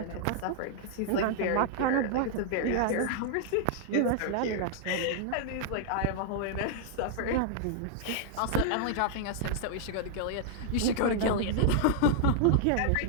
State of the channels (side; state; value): both; different; correlation -0.01